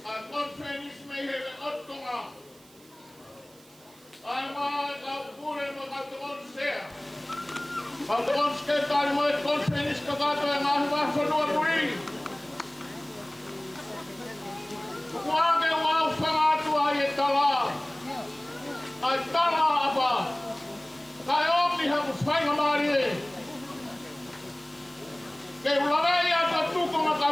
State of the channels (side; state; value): right; noise; hiss, 26 dB below the sound